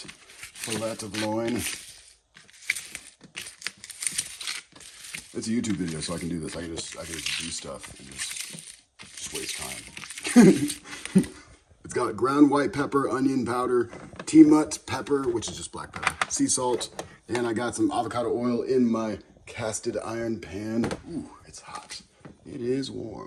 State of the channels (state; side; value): identical; both; correlation 1.00